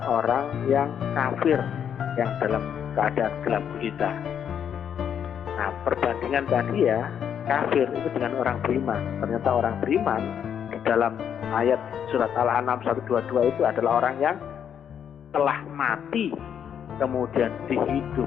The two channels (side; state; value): right; quieter; 8.5 dB